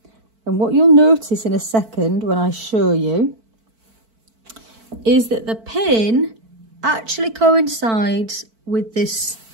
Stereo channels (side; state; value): left; late; 4.5 ms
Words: And what you'll notice in a second when I show you is that the pin actually coincides with this